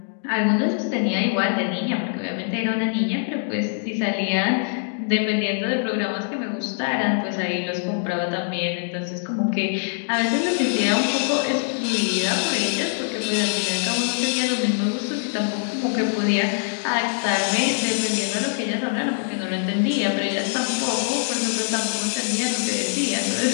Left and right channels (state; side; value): silent; right; digital silence